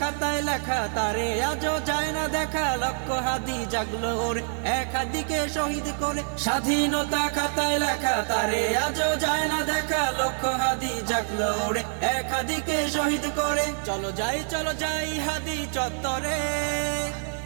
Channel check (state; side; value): silent; left; 61 dB below the other